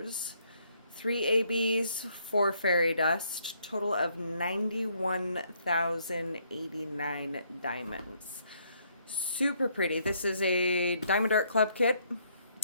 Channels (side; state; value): both; inverted; correlation -0.69